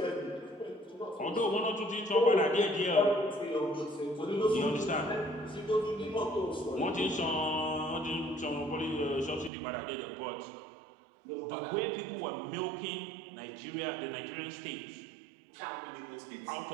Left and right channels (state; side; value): drops out; left; at 9.5 s